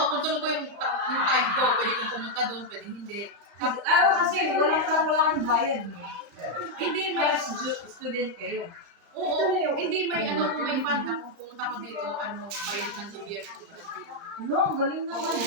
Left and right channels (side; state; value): left; late; 34 ms